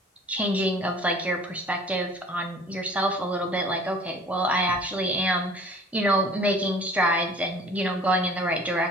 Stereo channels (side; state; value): both; normal; correlation 0.49